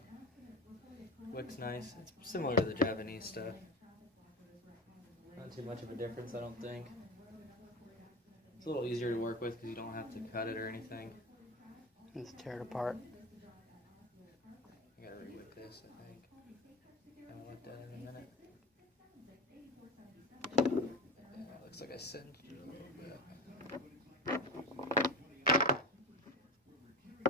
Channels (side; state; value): both; normal; correlation 0.25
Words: Wick's nice. It's similar to the Japanese stuff. Not too much of a difference, I don't think. It's a little easier to work with because you don't have to cut it or anything. Let's tear it apart. I gotta re-wick this, I think. I haven't looked at it in a minute. Yeah, it looks like I singed it a little bit.